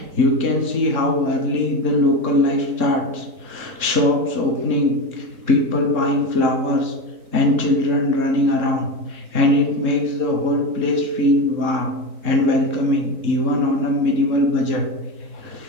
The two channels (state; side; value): late; left; 3.7 ms